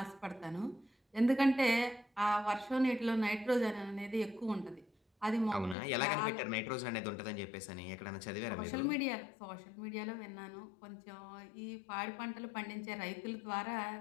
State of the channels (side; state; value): right; drops out; at 5.8 s